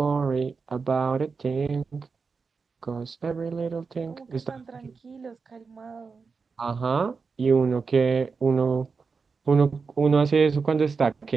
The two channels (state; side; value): quieter; left; 5.0 dB